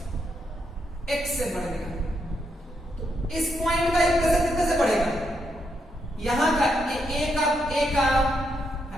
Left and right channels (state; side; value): normal; both; correlation 0.79